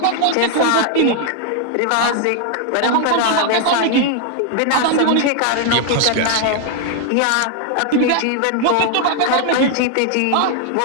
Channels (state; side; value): different; both; correlation 0.00